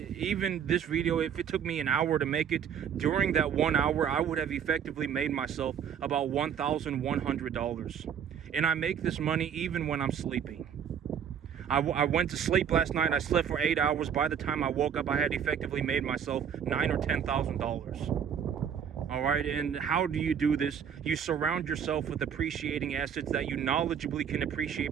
this video, if it took me an hour to make it, during that 1 hour, I would have effectively made myself about $1,100. And I make this money even when I'm sleeping. I went to sleep last night. I slept for 8 hours. By the time I woke up, I had effectively made myself $9,000 or $10,000. All right, and how do you do this? You surround yourself with appreciating assets that you knowledgeably can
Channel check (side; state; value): left; quieter; 8.1 dB